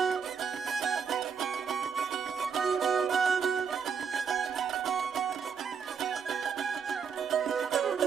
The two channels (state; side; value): quieter; left; 6.5 dB